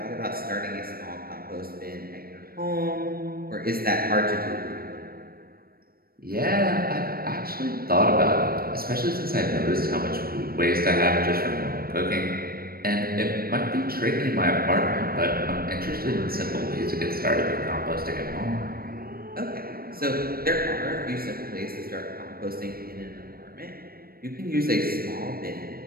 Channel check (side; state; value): left; late; 0.44 ms